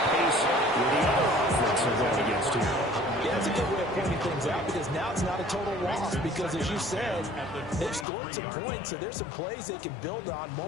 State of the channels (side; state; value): right; drops out; at 8.1 s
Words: pace with the other offense they're going against here. Yeah, that's a good way of pointing things out because now it's not a total loss because, as you said, they've scored some points, so there's some plays they can build on,